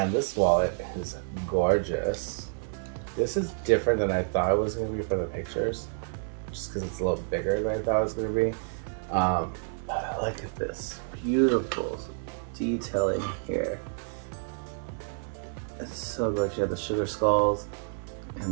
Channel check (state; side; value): silent; left; 59 dB below the other